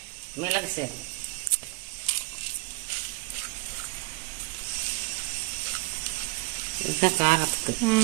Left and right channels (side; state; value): left; quieter; 25.9 dB